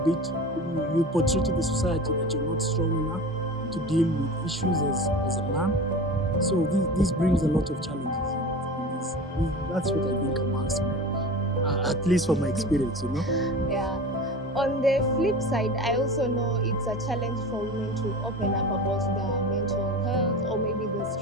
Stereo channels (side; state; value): both; normal; correlation 0.33